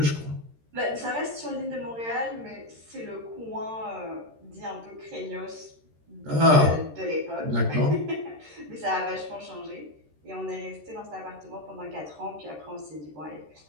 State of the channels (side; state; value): left; late; 13 ms